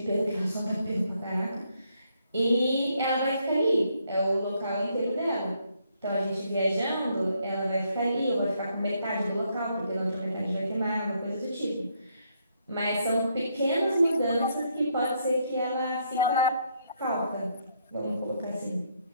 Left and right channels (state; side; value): inverted; both; correlation -0.73